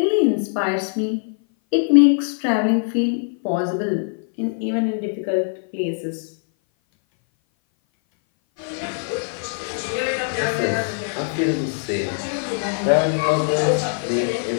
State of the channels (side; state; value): right; silent; 58 dB below the other